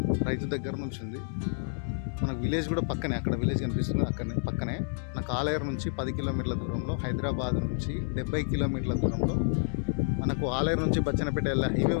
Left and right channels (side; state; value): right; silent; digital silence